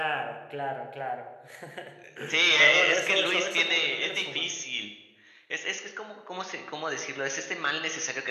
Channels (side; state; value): both; identical; correlation 1.00